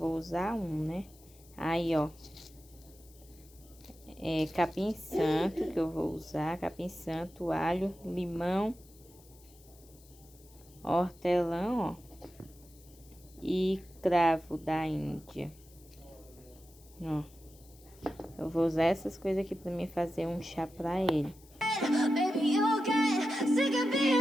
usar um, né? Aí, ó, capim santo que eu vou usar, capim santo, alho, limão, hortelã, ó, e cravo da Índia, ó. Eu vou usar essas coisas aqui pra mim fazer um chá pra ele. Baby, you'll get sick of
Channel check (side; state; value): left; noise; hiss, 25 dB below the sound